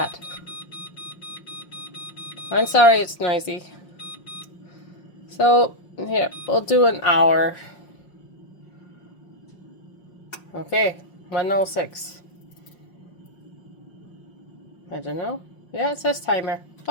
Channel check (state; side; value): late; right; 5.5 ms